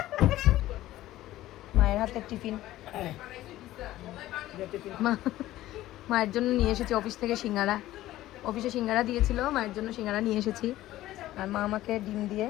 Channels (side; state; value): right; quieter; 15.2 dB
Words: মায়ের হাতের টিফিন। মায়ের জন্য নিয়ে এসেছি অফিস থেকে সিঙ্গারা। অফিসে সিঙ্গারা দিয়েছিল, মায়ের জন্য সিঙ্গারা নিয়ে এসেছি। আর মা আমাকে ডিম দিয়ে